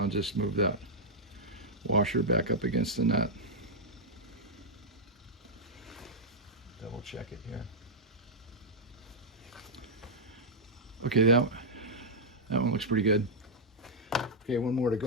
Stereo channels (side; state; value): both; normal; correlation -0.06